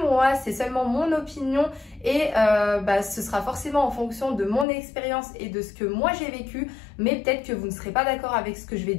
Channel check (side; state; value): right; drops out; at 4.7 s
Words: moi, c'est seulement mon opinion et ce sera forcément en fonction de mon expérience et de ce que moi j'ai vécu, mais peut-être que vous ne serez pas d'accord avec ce que je vais